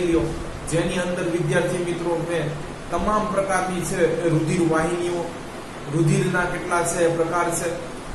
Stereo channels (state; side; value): identical; both; correlation 1.00